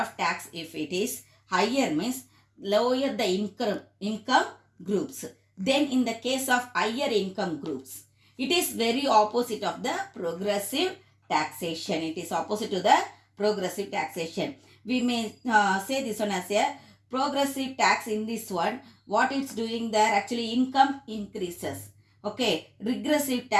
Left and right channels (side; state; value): both; identical; correlation 1.00